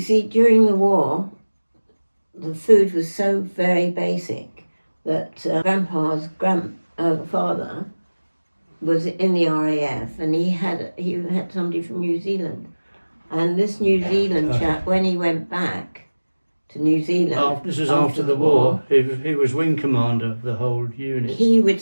see, during the war, the food was so very basic that Grandpa's father was in the RAF, and he had somebody from New Zealand, and this New Zealand chap, when he went back to New Zealand, This was after the war. He was wing commander of the whole unit. he would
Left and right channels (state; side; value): inverted; both; correlation -1.00